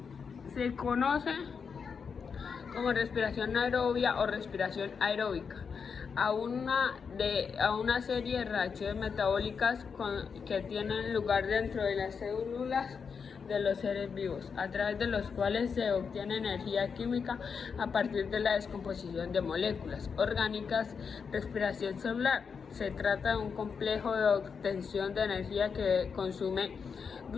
Se conoce como respiración aerobia o respiración aeróbica a una serie de reacciones metabólicas que tienen lugar dentro de las células de los seres vivos, a través de los cuales se obtiene energía química a partir de la descomposición de moléculas orgánicas. Respiración celular: se trata de un complejo de obtención de energía que consume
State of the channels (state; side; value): quieter; right; 6.0 dB